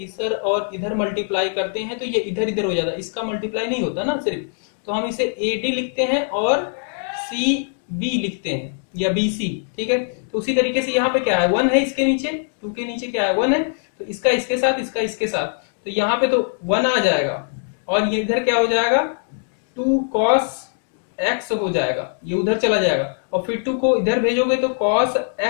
और इधर मल्टीप्लाई करते हैं तो ये इधर इधर हो जाता है, इसका मल्टीप्लाई नहीं होता ना सिर्फ। तो हम इसे AD लिखते हैं और CB लिखते हैं या BC। ठीक है, तो उसी तरीके से यहाँ पे क्या है, 1 है, इसके नीचे 2 के नीचे क्या है, 1 है, तो इसका इसके साथ, इसका इसके साथ, तो यहाँ पे तो 1 आ जाएगा और ये इधर क्या हो जाएगा, 2 cos x हो जाएगा, ये उधर चला जाएगा और फिर 2 को इधर भेजोगे तो cos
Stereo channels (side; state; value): right; silent; digital silence